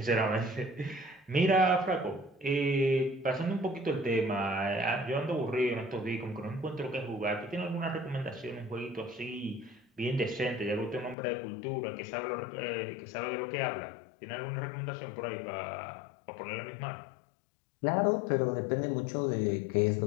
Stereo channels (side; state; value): right; drops out; at 11.2 s